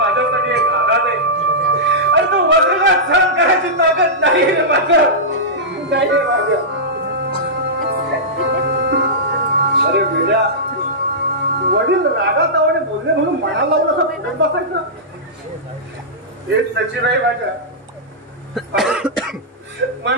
एक आघात आहे. आणि तो वजनात सहन करायची ताकद नाही रे माझ्या, नाही रे माझ्या. अरे वेड्या, वडील रागात आवडे बोलले म्हणून मनाला लावून असं फुटत बसायचं? हेच सचिन आहे माझ्या.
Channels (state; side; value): normal; both; correlation -0.14